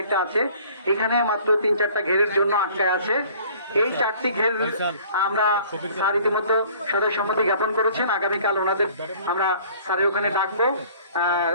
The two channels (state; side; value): inverted; both; correlation -0.52